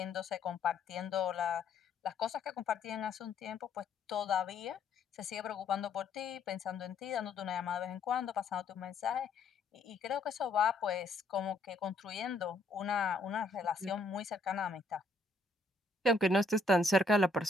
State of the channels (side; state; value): right; quieter; 3.1 dB